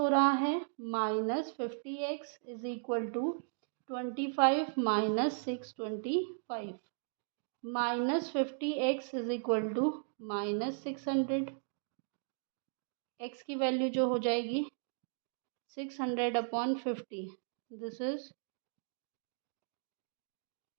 रहा है minus 50x is equal to 25 minus 625, minus 50x is equal to minus 600, x की वैल्यू जो हो जाएगी 600/50, दिस इज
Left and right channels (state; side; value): silent; left; digital silence